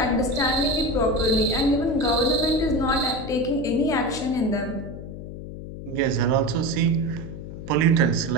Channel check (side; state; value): left; noise; hum, 11 dB below the sound